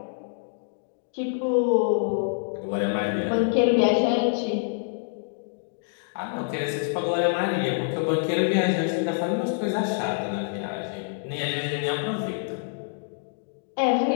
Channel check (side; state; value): right; silent; digital silence